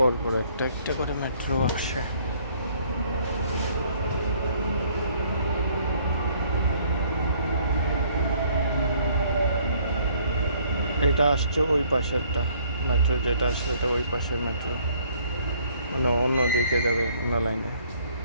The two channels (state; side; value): inverted; both; correlation -0.62